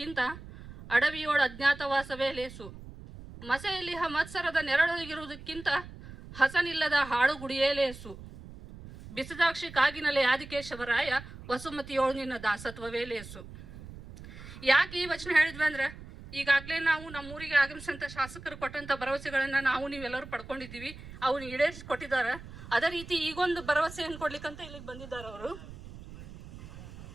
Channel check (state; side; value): noise; right; rumble, 15 dB below the sound